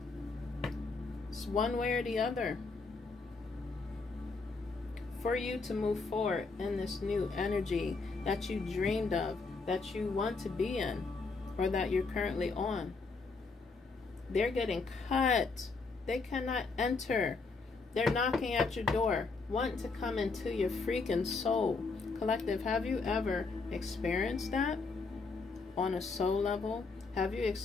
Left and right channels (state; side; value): quieter; right; 4.1 dB